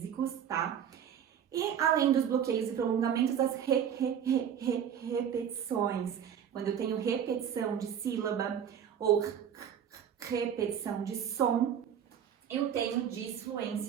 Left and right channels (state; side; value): quieter; left; 8.8 dB